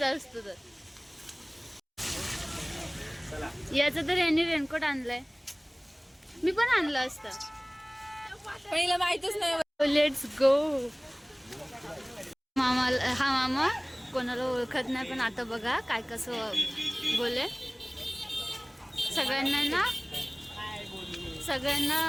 असतं. तर याचं तर यांनी रेनकोट आणलाय. मी पण आणलं असतं. पहिला माहितच नाही. Let's go. हा मामा कोणाला ओळखत नाही, पण आता बघा काय कसं बोले. सगळ्यांना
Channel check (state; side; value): identical; both; correlation 1.00